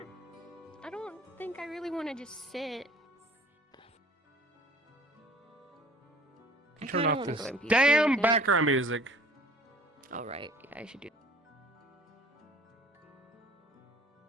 I don't think I really want to just sit. I Turn kinda off wanna this go NPC damn again. background music. All right, yeah, I should do.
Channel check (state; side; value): normal; both; correlation 0.50